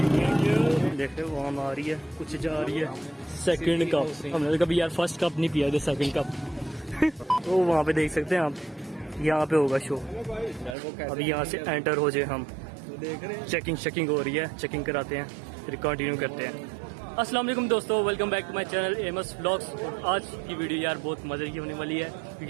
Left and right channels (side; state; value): left; drops out; at 10.8 s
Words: देख रहे हो, वहाँ आ रही है, कुछ जा रही है। सेकंड कप हमने कभी यार फर्स्ट कप नहीं पिया, सेकंड कप। तो वहाँ पे देख सकते हैं आप, यहाँ पे होगा शो। अभी यहाँ से एंटर हो जाए हम, चेकिंग हो रही है, चेकिंग कराते हैं, फिर कंटिन्यू करते हैं। अस्सलाम वालेकुम दोस्तों, welcome back to my channel MS vlogs. आज की वीडियो यार बहुत मज़े की होने वाली है,